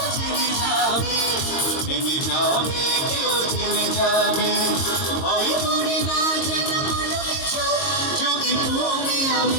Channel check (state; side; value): late; right; 22 ms